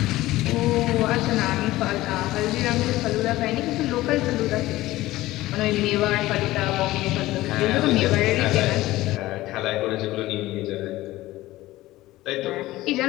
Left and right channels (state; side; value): quieter; right; 17.1 dB